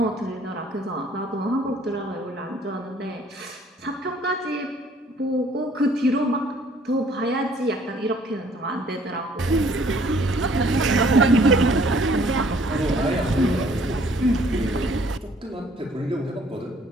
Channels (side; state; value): both; normal; correlation 0.59